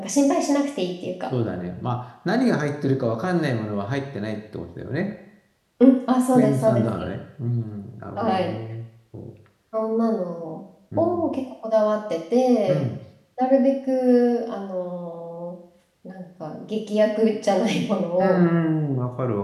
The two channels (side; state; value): both; identical; correlation 1.00